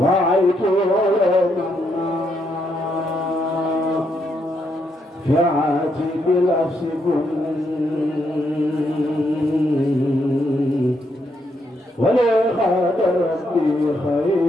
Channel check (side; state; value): both; normal; correlation 0.77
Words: علينا في عاتب الأفس ولي خاد ربي